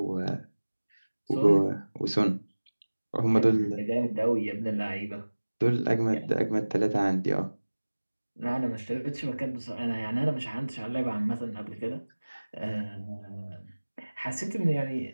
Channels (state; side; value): inverted; both; correlation -1.00